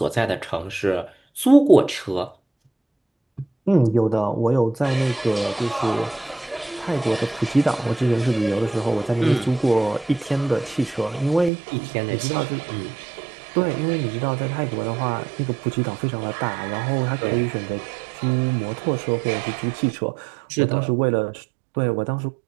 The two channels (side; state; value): left; drops out; at 11.5 s